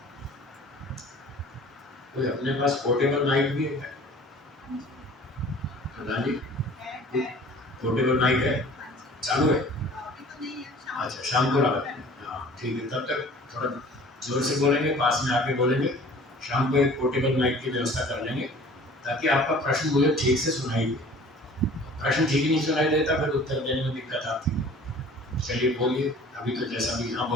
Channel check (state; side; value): normal; both; correlation 0.47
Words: कोई अपने पास पोर्टेबल माइक भी है? प्रधान जी, पोर्टेबल माइक है, चालू है? अच्छा, शाम को लगा, हाँ ठीक है, तब तक थोड़ा जोर से बोलेंगे, पास में आके बोलेंगे। शाम को एक पोर्टेबल माइक की व्यवस्था कर लेंगे ताकि आपका प्रश्न मुझे ठीक से सुनाई दे। प्रश्न ठीक ही नहीं सुनाई देता फिर उत्तर देने में दिक्कत आती है। चलिए बोलिए, अभी तो जैसा भी, हाँ